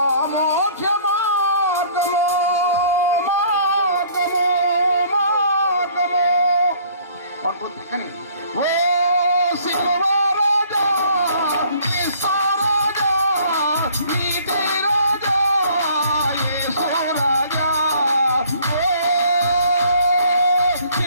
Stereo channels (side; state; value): both; inverted; correlation -0.56